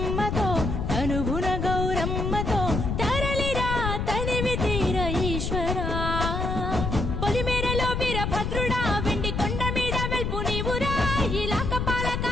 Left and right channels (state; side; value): noise; left; rumble, 1 dB below the sound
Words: తనువున గౌరమ్మతో తరలిరా తనివి తీర ఈశ్వర పొలిమేరలో వీరభద్రుడా వెండి కొండ మీద వెల్పు నీవురా ఇలాక